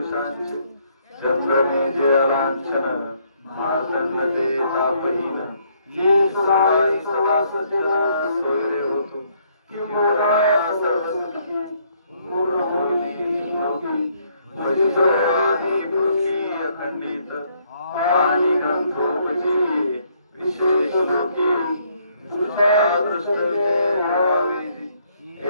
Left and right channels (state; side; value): inverted; both; correlation -0.69